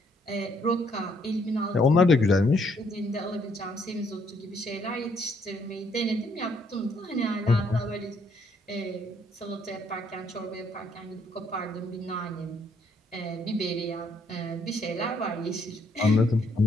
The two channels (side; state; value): both; normal; correlation 0.69